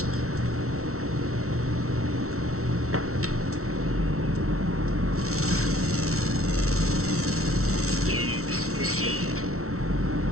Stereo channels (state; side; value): late; left; 0.63 ms